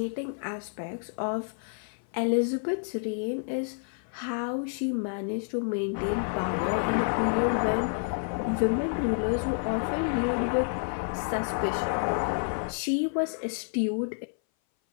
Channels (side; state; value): right; silent; 58 dB below the other